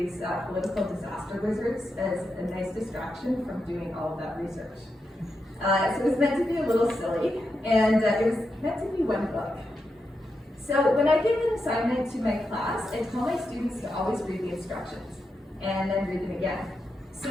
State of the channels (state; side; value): normal; both; correlation 0.86